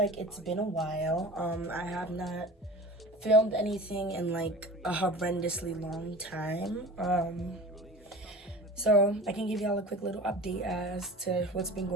it's been a while. I have not filmed anything in like a horrendously long time. So I can give y'all a quick little update as to what's been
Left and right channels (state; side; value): normal; both; correlation 0.37